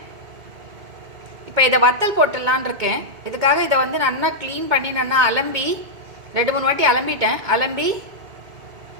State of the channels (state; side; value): late; left; 2.2 ms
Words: இப்போ இதை வத்தல் போட்டுடலான் இருக்கேன். இதுக்காக இதை வந்து நல்லா க்ளீன் பண்ணி நல்லா அலம்பி 2-3 வாட்டி அலம்பிட்டேன். அலம்பி